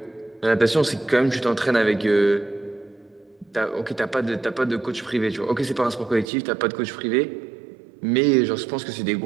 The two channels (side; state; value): left; drops out; at 6.2 s